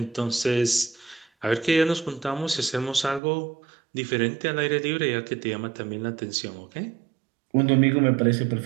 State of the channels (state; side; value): drops out; left; at 3.2 s